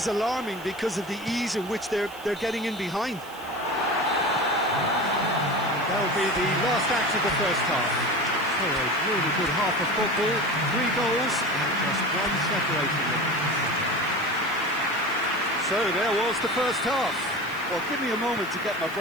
alarming because of the ease in which they're getting in behind. That'll be the last act of the first half. So a really good half of football, 3 goals and just one separating them. So there was the first half. Well, give me a moment to get my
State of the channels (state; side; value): noise; right; hiss, 20 dB below the sound